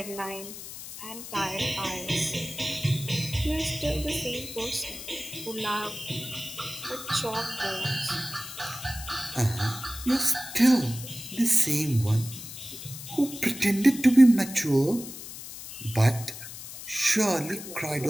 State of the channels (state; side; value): noise; left; hiss, 11 dB below the sound